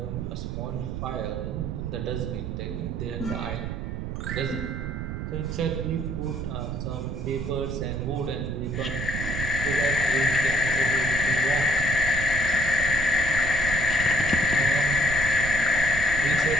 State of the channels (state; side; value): noise; right; rumble, 4 dB below the sound